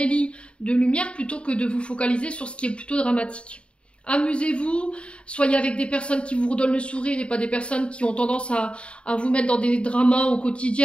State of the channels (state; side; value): late; right; 0.057 ms